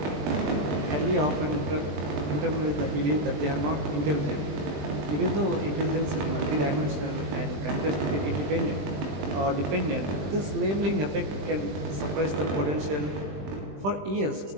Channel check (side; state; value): left; late; 20 ms